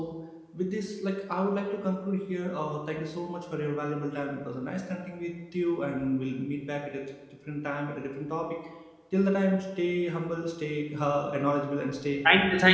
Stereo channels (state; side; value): identical; both; correlation 1.00